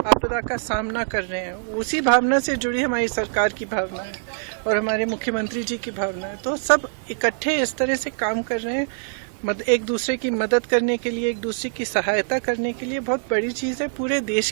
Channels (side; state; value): left; silent; 63 dB below the other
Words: आपदा का सामना कर रहे हैं, उसी भावना से जुड़ी हमारी सरकार की भावना है और हमारे मुख्यमंत्री जी की भावना है। तो सब इकट्ठे इस तरह से काम कर रहे हैं, एक दूसरे की मदद करने के लिए, एक दूसरे की सहायता करने के लिए। बहुत बड़ी चीज़ है, पूरे देश